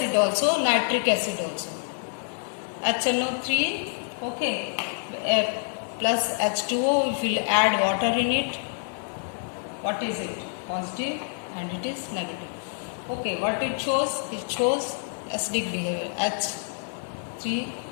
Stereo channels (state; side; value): silent; right; digital silence